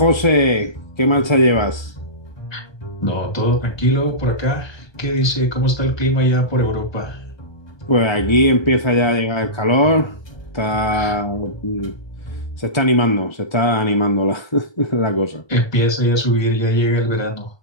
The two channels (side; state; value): right; late; 1.3 ms